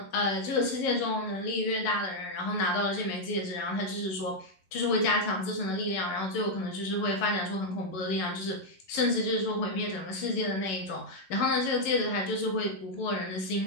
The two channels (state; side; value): late; right; 11 ms